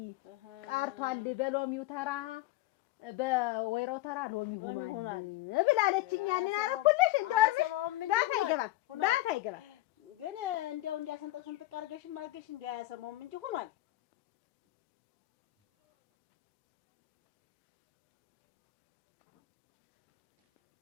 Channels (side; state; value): right; quieter; 17.1 dB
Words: ቀርቷል። በሎሚው ተራ በወይራው ተራ ሎሚ ሆኗል ብላለችኝ። ያንን አረኩልሽ ባፍ አይገባም ግን እንዲያው እንዲያሰንጠቅ ስንጥቅ አድርገሽም አድርገሽ እንዲያሰማውም እንጂ ሆኗል።